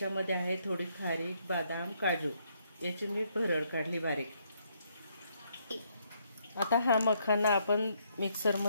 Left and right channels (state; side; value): inverted; both; correlation -0.72